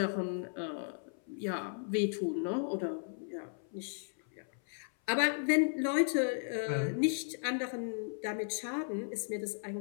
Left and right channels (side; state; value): right; silent; 54 dB below the other